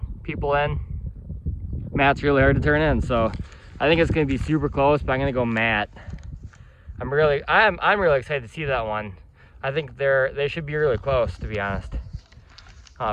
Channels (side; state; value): both; identical; correlation 1.00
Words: people in, Matt's really hard to turn in. So I think it's going to be super close, but I'm going to go Matt. I'm really excited to see that one. I think they should be really close, to be honest.